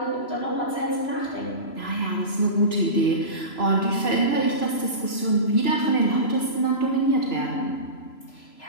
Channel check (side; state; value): right; late; 3.0 ms